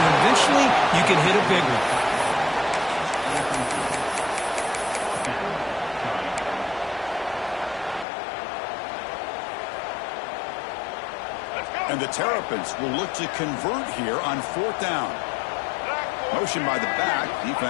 eventually you can hit a big one. And the Terrapins will look to convert here on 4th down. Motion by the back.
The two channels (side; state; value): right; drops out; at 8.1 s